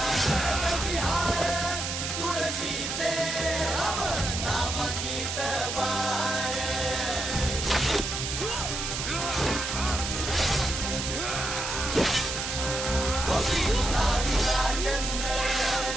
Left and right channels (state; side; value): noise; right; hiss, 3 dB below the sound